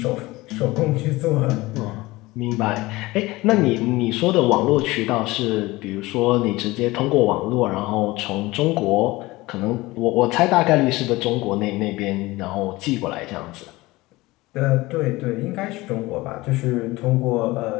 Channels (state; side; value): quieter; right; 20.2 dB